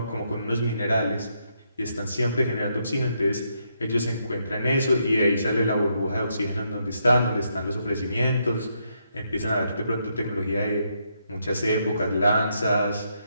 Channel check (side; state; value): both; inverted; correlation -0.78